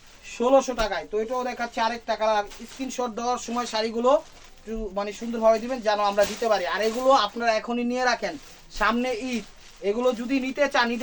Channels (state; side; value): identical; both; correlation 1.00